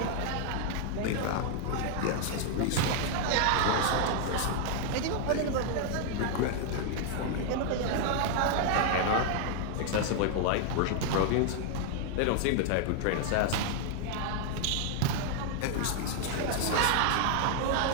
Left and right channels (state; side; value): different; both; correlation 0.00